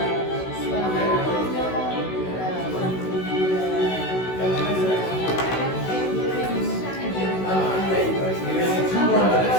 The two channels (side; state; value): right; late; 16 ms